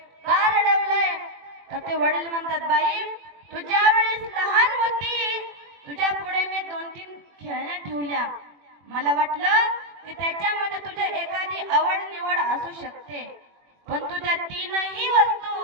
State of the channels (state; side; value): late; left; 21 ms